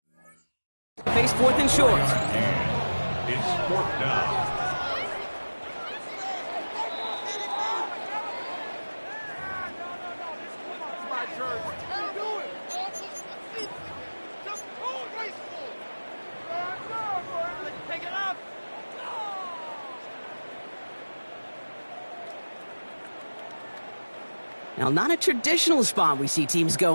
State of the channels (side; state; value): both; inverted; correlation -1.00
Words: There face 4th and short. It's 4th down. Now, not a traditional spot we see teams